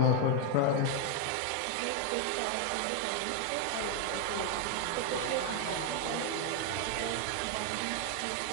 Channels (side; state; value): both; different; correlation 0.01